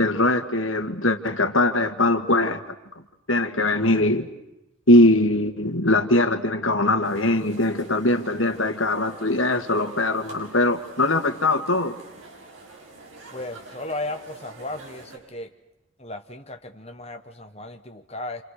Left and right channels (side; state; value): both; normal; correlation 0.23